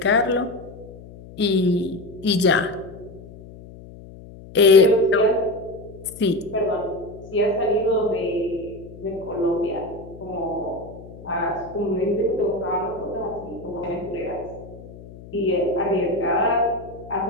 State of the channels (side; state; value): left; noise; hum, 17 dB below the sound